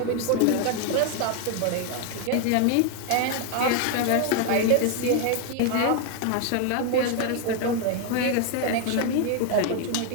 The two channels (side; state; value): both; different; correlation 0.00